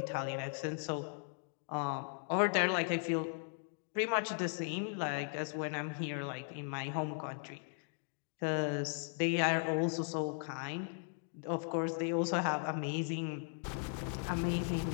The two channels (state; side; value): silent; right; 53 dB below the other